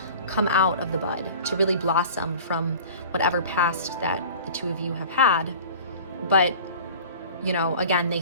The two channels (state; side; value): inverted; both; correlation -0.42